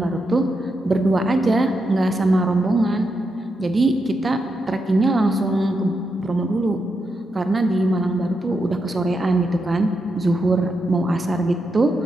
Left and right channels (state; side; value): normal; both; correlation 0.84